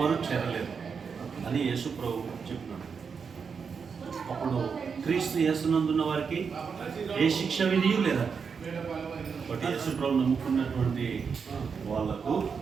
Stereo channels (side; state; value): left; quieter; 5.9 dB